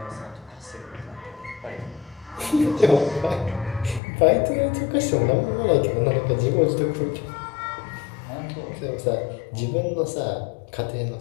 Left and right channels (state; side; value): drops out; right; at 4.0 s